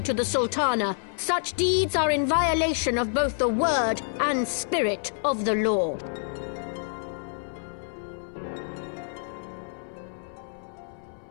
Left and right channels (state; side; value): silent; right; 59 dB below the other